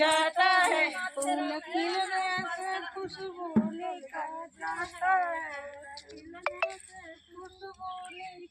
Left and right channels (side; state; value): both; identical; correlation 1.00